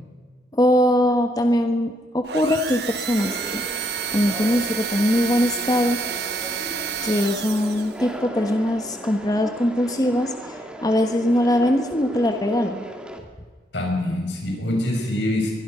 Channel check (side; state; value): both; normal; correlation 0.75